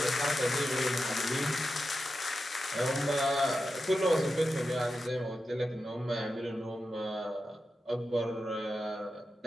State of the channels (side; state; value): both; normal; correlation 0.90